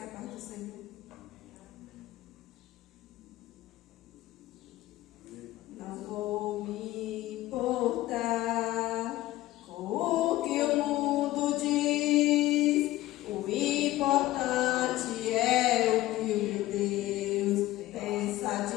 a paz do Senhor. Não vou me importar com o que o mundo diz. O importante é o que o Deus pensa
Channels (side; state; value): right; quieter; 16.3 dB